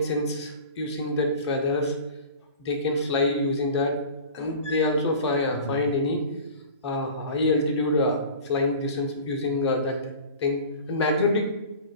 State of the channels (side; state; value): both; inverted; correlation -0.39